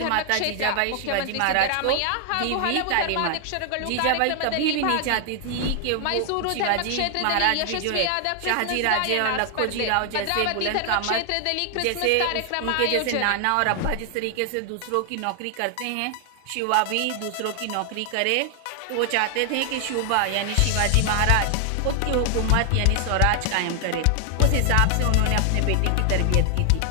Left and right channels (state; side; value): different; both; correlation 0.00